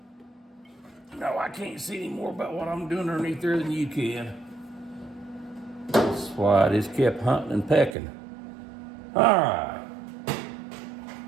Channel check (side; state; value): left; drops out; at 8.0 s